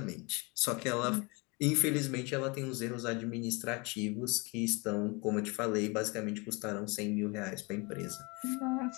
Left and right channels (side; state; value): right; quieter; 28.3 dB